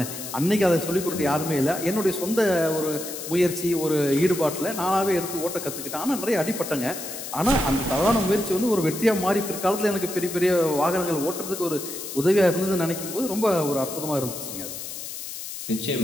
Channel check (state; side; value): noise; left; hiss, 9 dB below the sound